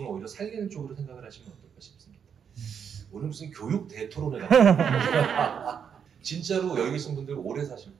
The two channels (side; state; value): left; quieter; 7.5 dB